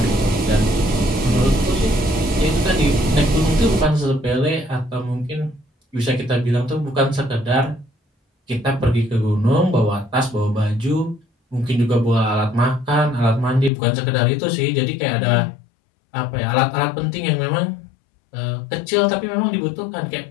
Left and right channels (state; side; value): drops out; right; at 13.7 s